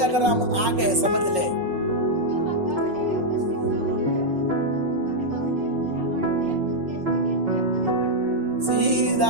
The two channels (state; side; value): late; left; 5.5 ms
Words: अगर हम आ गए, समझ ले, सीधा